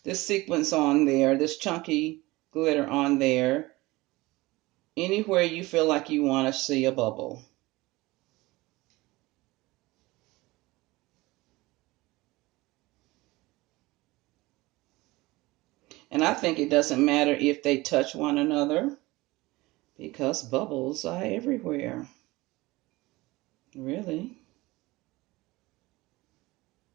sequence on there, this chunky glitter on there, anywhere you feel like you want to see a bubble. And I think it doesn't matter if they touch one another because bubbles are everywhere. Really.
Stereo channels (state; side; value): quieter; left; 20.9 dB